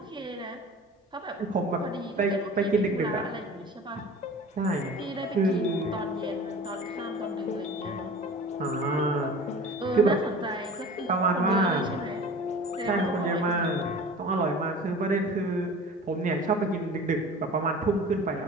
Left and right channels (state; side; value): normal; both; correlation 0.40